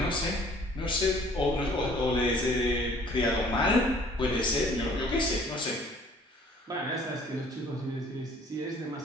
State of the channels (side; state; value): both; normal; correlation 0.55